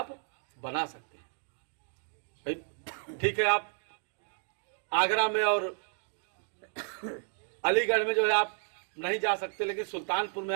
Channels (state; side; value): silent; left; 56 dB below the other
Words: बना सकते हैं। भाई ठीक है, आप आगरा में और अलीगढ़ में जो है आप नहीं जा सकते, लेकिन सुल्तानपुर में